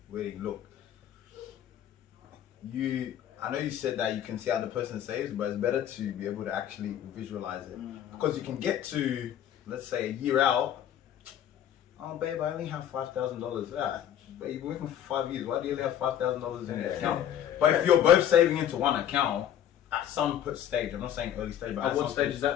wedding, look, I know you said that you can see how the person saves, but it's better to be able to actually visualize it, because you can get to, let's say, a year out. Oh, babe, I only have $5,000. Yeah, but you've been working for 5 years. Why do you only have $5,000 in your account? But if you're both saving into one account at some stage, I'm not saying early stage, but at what stage is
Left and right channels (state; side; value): quieter; right; 10.4 dB